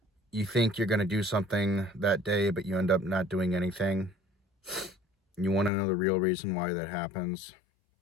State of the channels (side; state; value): right; drops out; at 5.7 s